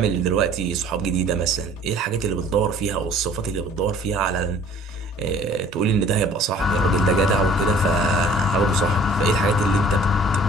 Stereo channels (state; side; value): normal; both; correlation 0.52